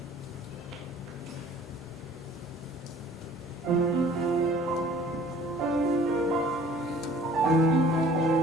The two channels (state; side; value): normal; both; correlation 0.51